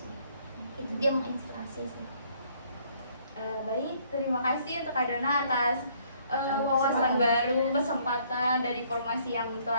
sih. Itu dia menginspirasi sih. Baik, terima kasih untuk Kak Dona atas wawasan baru, kesempatan dan informasi yang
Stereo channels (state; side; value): inverted; both; correlation -0.64